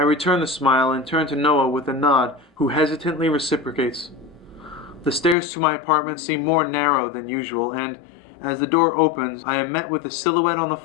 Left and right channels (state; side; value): drops out; right; at 5.4 s